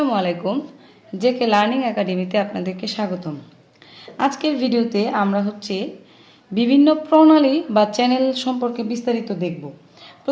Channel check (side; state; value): both; identical; correlation 1.00